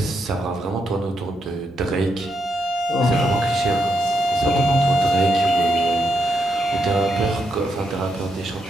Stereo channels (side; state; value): both; normal; correlation 0.80